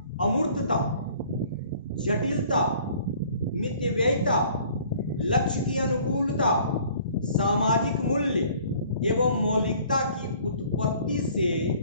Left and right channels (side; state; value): both; inverted; correlation -0.54